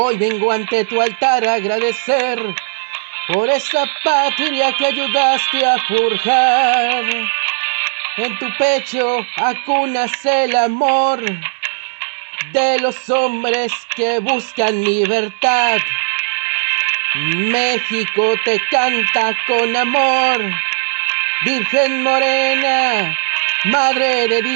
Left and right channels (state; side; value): silent; left; digital silence